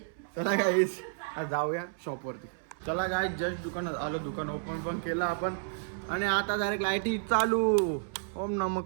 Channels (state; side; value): silent; left; 57 dB below the other